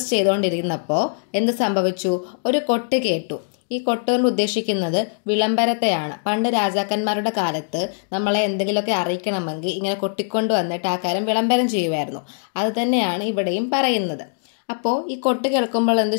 ചെയ്തുകൊണ്ടിരുന്നപ്പോൾ എന്ത് സംഭവിച്ചു? ഒരു കൊട്ട് കേട്ടു. ഈ കൊട്ട് കൊണ്ട് ഉദ്ദേശിക്കുന്നത് വിളംബരത്തെയാണ്. പണ്ട് രാജാക്കന്മാരുടെ കാലത്ത് നമ്മളെ എന്തെങ്കിലുമൊക്കെ അറിയിക്കണമെങ്കിൽ ഇങ്ങനെ കൊട്ടിക്കൊണ്ട് വന്നിട്ട് ആ കാര്യം വിളംബരം ചെയ്യുമായിരുന്നു. അത് തന്നെയാണ് ഇവിടെയും പറയുന്നത്. അപ്പോൾ ഈ കൊട്ട് കേൾക്കുമ്പോൾ എന്ത്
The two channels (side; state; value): right; silent; digital silence